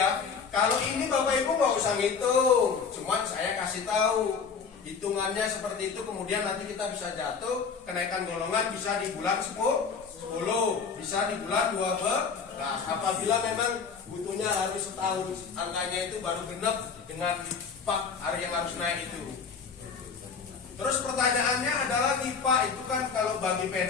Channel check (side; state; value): right; quieter; 5.7 dB